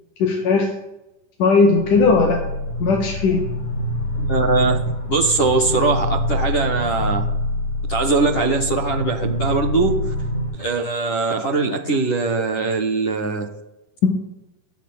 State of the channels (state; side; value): late; right; 10 ms